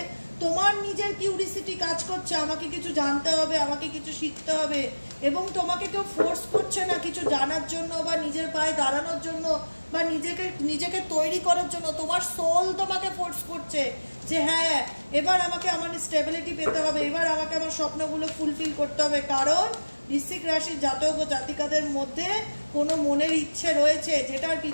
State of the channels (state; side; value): inverted; both; correlation -1.00